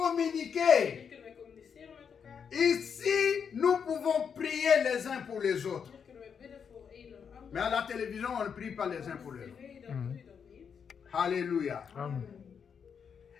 Hier kunnen wij communiceren met elkaar. Ici, nous pouvons prier les uns pour les autres. Hier kunnen wij bidden voor een en ander. Mais à la télévision, on ne prie pas les uns pour Op les autres. tv dan doe je dat niet. Alléluia. Amen.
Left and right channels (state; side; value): quieter; right; 6.9 dB